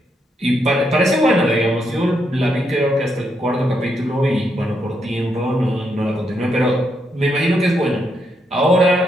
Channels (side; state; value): both; normal; correlation 0.79